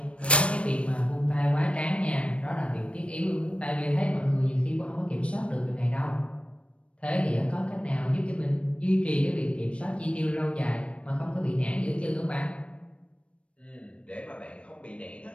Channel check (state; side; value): late; right; 0.061 ms